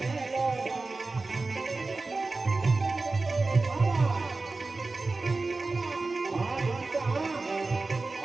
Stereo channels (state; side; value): quieter; left; 3.6 dB